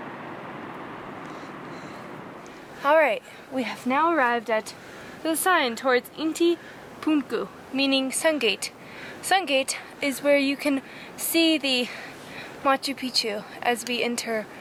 Alright, we have now arrived at the sign towards Inti Punku, meaning Sungate. Sungate is where you can see the Machu Picchu as we enter,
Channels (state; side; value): identical; both; correlation 1.00